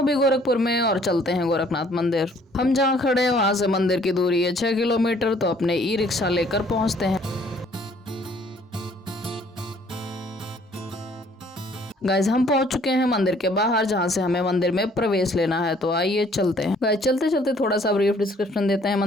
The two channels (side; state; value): both; normal; correlation 0.60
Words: गोरखपुर में और चलते हैं गोरखनाथ मंदिर। हम जहाँ खड़े हैं वहां से मंदिर की दूरी है 6 किलोमीटर, तो अपने ई रिक्शा लेकर पहुंचते हैं। गाइज हम पहुंच चुके हैं मंदिर के बाहर, जहां से हमें मंदिर में प्रवेश लेना है। तो आइए चलते हैं। गाइज चलते चलते थोड़ा सा ब्रीफ डिस्क्रिप्शन देते हैं